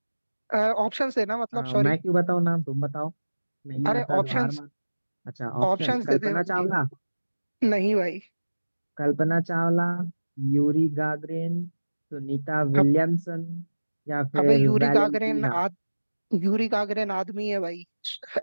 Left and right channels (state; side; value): inverted; both; correlation -1.00